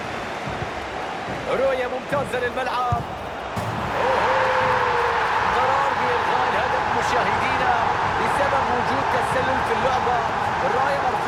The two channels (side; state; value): both; identical; correlation 1.00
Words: رؤية ممتازة للملعب. قرار بإلغاء الهدف مشاهدينا بسبب وجود تسلل في اللعبة. الراية